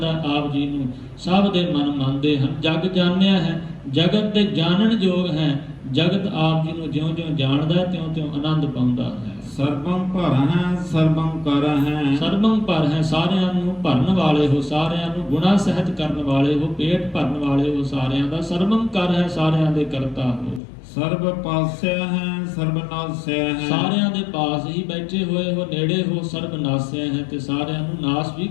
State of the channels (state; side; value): drops out; right; at 20.6 s